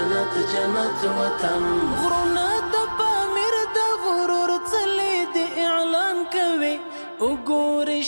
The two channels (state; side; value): inverted; both; correlation -1.00